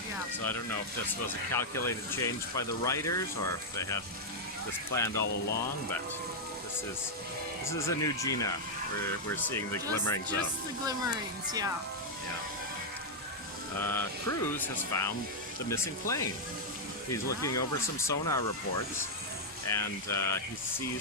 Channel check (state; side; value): normal; both; correlation -0.03